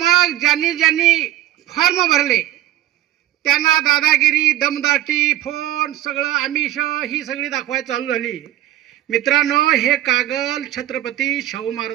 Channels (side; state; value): left; quieter; 13.8 dB